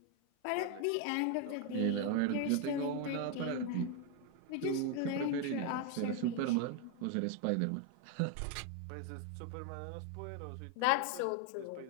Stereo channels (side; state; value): both; different; correlation 0.01